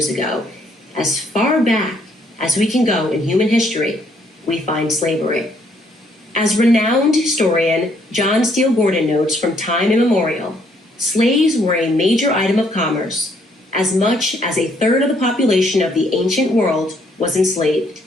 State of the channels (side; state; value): both; normal; correlation 0.68